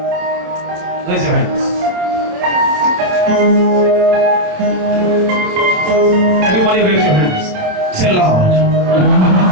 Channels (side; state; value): left; late; 27 ms